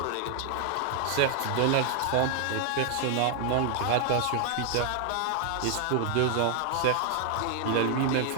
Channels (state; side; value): different; both; correlation 0.00